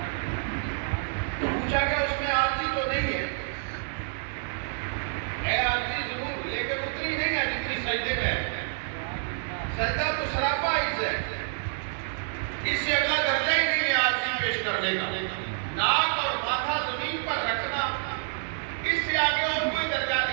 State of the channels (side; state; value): left; silent; digital silence